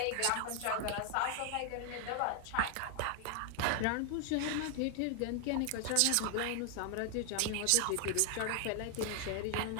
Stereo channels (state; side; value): different; both; correlation 0.00